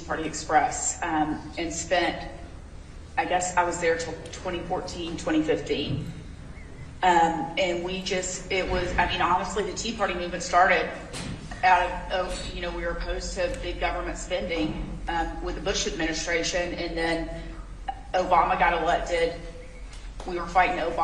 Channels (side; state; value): both; identical; correlation 1.00